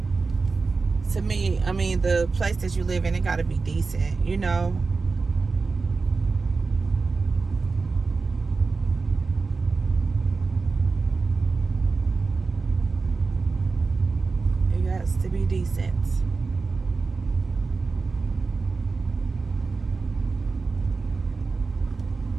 to me, I mean, the place that you live in, it got to be decent, you know. To be decent.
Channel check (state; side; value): quieter; left; 4.2 dB